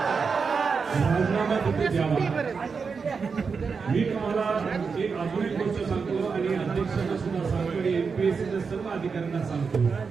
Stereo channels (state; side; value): quieter; left; 5.3 dB